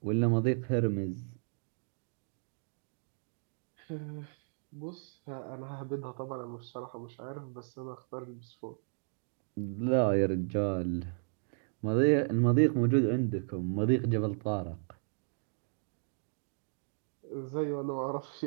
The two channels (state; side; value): silent; left; 55 dB below the other